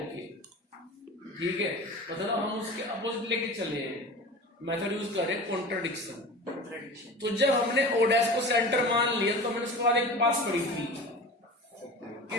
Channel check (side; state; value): both; normal; correlation 0.35